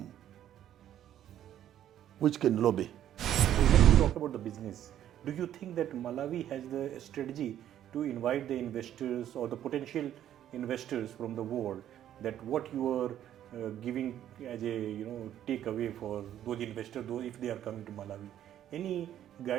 which can lobby. When you talk about the business, do you think that Malawi has the strategy to invite the investors or the potential investors from the world, that what you are giving as a takeaway for those investors, if they are coming to Malawi? Any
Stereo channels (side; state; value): left; quieter; 11.2 dB